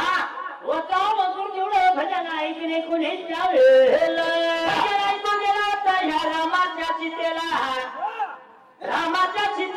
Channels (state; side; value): identical; both; correlation 1.00